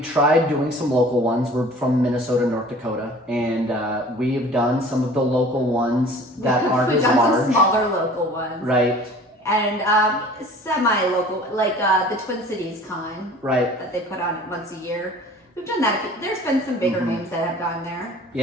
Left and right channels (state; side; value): normal; both; correlation 0.46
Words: tried doing some local ones. We're from Minnesota, North Dakota, and we've done some of the local ones that aren't We've as done large. some smaller local ones. Right. and semi-local, like the Twin Cities Con Right. that they put on once a year. We've done that. There's been some bigger names that have gone there.